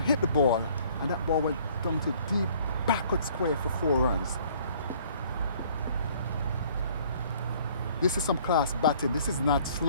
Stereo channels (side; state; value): both; inverted; correlation -0.57